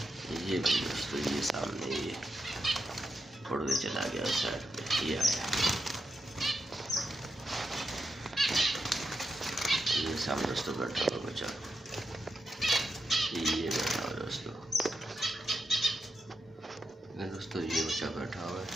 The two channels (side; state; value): both; normal; correlation 0.86